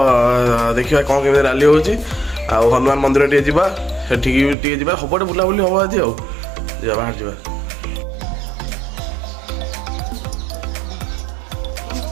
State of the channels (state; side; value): drops out; left; at 4.5 s